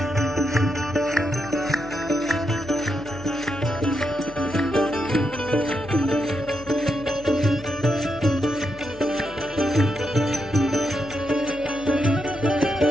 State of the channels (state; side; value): noise; left; hum, 20 dB below the sound